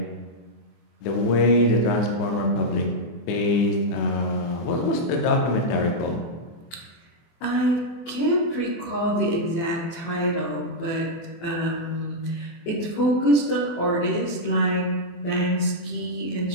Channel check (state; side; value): late; right; 23 ms